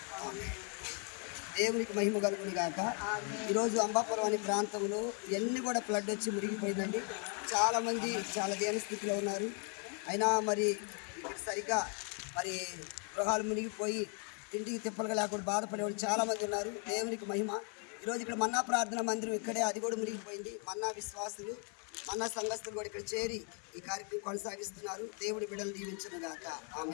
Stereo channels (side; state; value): right; quieter; 39.6 dB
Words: ఆమేన్. దేవునికి మహిమ కలుగును గాక. ఈరోజు అంబాపురం అనే ప్రాంతంలో ఎన్ని కూడా ఫ్లడ్ వచ్చి మునిగిపోయిందండి. చాలామంది చాలా దీన స్థితిలో ఉన్నారు. అయినా మరి సరిగ్గా మరి గృహాలు మునిగిపోయి తిండికి తిప్పలుగా లేకుండా బాధపడేవాళ్ళు చాలామంది ఉన్నారు. దేవునికి మహిమ. ఈరోజు ఇక్కడ మన్నా ప్రార్థన మందిరం ఇక్కడే, అది కూడా మునిగిపోయింది. మన్నా విశ్వాసులు, మన్నా సంఘస్థులు కూడా ఇక్కడ చేరి ఈ కార్యక్రమం కొనసాగిస్తున్నారు. దేవుడి బిడ్డలు దీవించును గాక.